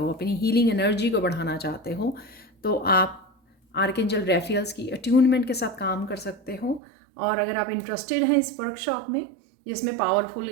अपनी हीलिंग एनर्जी को बढ़ाना चाहते हो, तो आप आर्कएंजल रैफियल्स की अट्यूनमेंट के साथ काम कर सकते हो। और अगर आप इंटरेस्टेड हैं इस वर्कशॉप में, जिसमें पावरफुल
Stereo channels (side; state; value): left; drops out; at 6.8 s